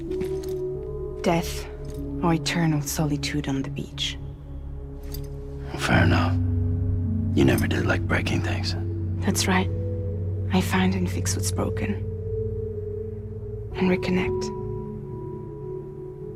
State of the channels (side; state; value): both; identical; correlation 1.00